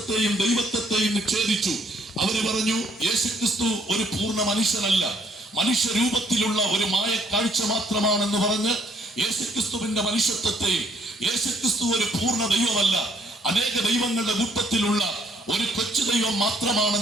ദൈവത്വത്തെയും നിഷേധിച്ചു. അവര് പറഞ്ഞു, യേശുക്രിസ്തു ഒരു പൂർണ്ണ മനുഷ്യനല്ല, മനുഷ്യരൂപത്തിലുള്ള ഒരു മായ കാഴ്ച മാത്രമാണെന്ന് പറഞ്ഞ് യേശുക്രിസ്തുവിന്റെ മനുഷ്യത്വത്തെയും, യേശുക്രിസ്തു ഒരു പൂർണ്ണ ദൈവമല്ല, അനേക ദൈവങ്ങളുടെ കൂട്ടത്തിലുള്ള ഒരു കൊച്ചു ദൈവം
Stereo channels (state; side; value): normal; both; correlation 0.66